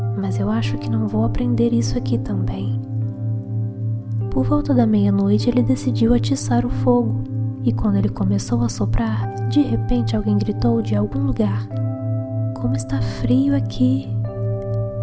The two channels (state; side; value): identical; both; correlation 1.00